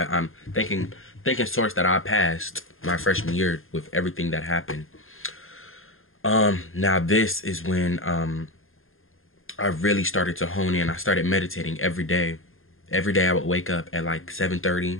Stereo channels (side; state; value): right; late; 0.60 ms